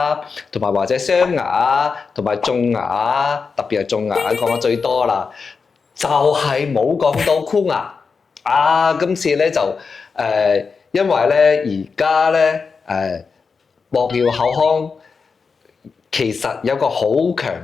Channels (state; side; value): quieter; right; 5.1 dB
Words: 同埋或者鑲牙啊，同埋種牙啊，特別係種牙講得最多啦，就係冇講到箍牙。今次咧就因為咧而家咧博耀口腔其實有個好強